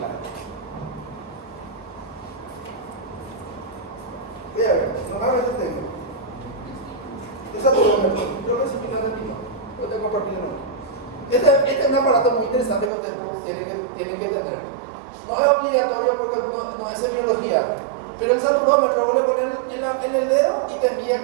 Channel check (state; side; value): drops out; left; at 12.9 s